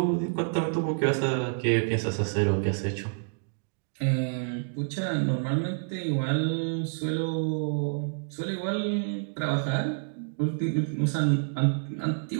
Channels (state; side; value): silent; left; digital silence